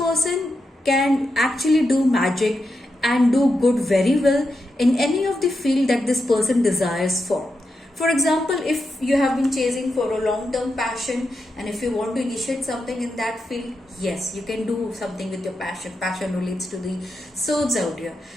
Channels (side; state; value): both; normal; correlation 0.87